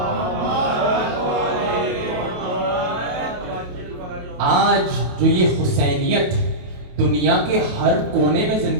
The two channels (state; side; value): late; left; 28 ms